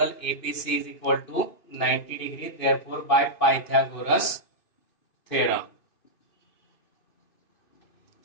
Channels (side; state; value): right; late; 2.6 ms